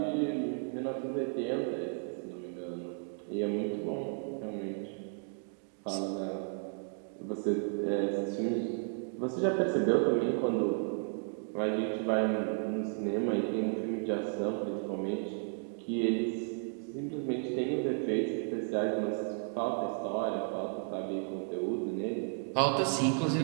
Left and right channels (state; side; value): silent; left; 55 dB below the other